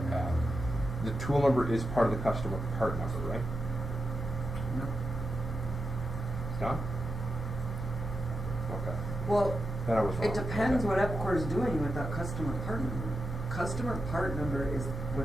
had, the tool number is part of the customer part number, right? No. It's not? Okay. Well, Then I was wrong. it depends Okay. what Epcor is doing with that customer part number. Customer part number is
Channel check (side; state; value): both; normal; correlation 0.88